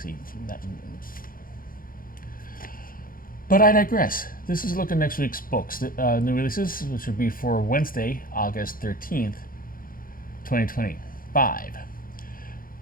But I digress. This is a look at next week's books, the new releases, which will be for Wednesday, August 13th, 2025.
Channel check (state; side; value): late; right; 0.41 ms